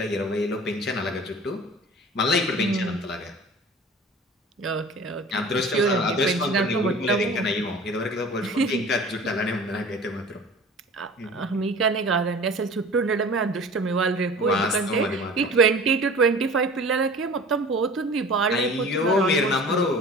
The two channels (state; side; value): normal; both; correlation 0.42